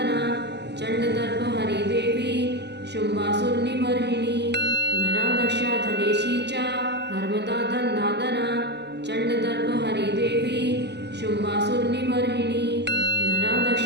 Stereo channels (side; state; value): left; late; 0.50 ms